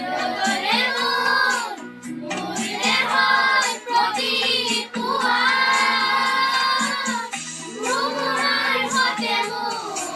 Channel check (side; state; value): both; identical; correlation 1.00